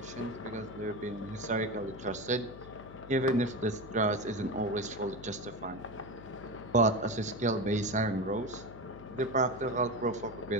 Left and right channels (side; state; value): left; noise; hum, 15 dB below the sound